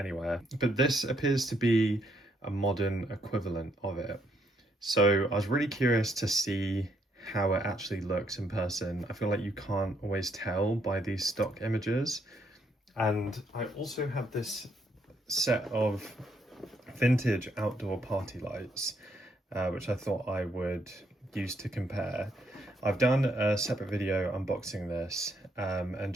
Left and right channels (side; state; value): both; normal; correlation 0.73